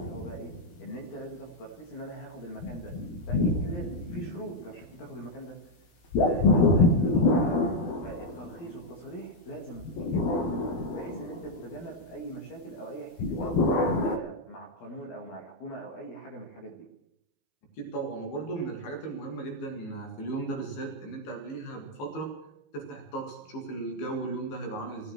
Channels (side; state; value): right; late; 12 ms